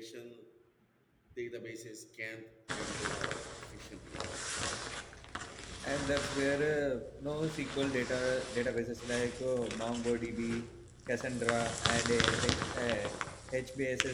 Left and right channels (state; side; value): identical; both; correlation 1.00